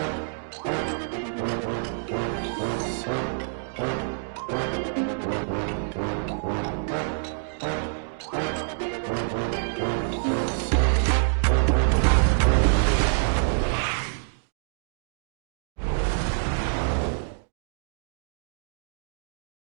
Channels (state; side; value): silent; left; digital silence